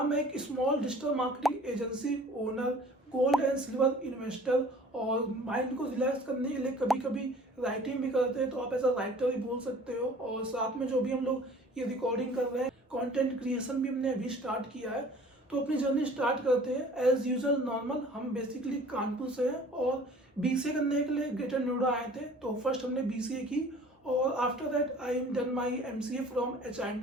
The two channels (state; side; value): normal; both; correlation 0.49